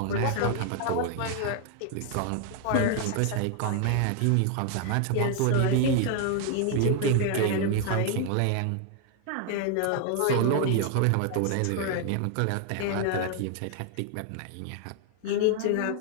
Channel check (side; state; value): both; different; correlation 0.00